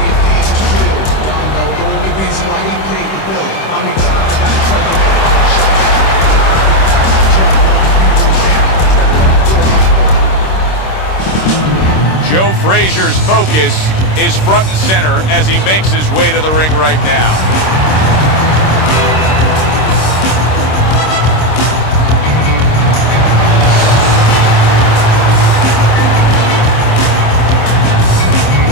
Joe Frazier's focus is front and center as he makes his way to the ring right now.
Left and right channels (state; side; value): late; right; 26 ms